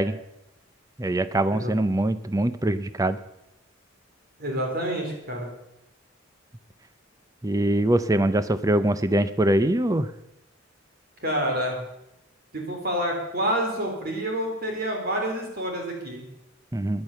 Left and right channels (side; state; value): both; normal; correlation 0.57